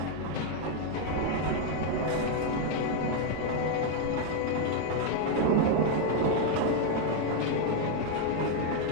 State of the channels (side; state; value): both; different; correlation 0.00